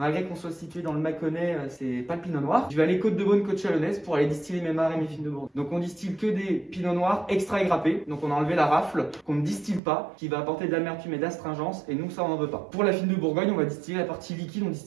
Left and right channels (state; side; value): drops out; left; at 9.8 s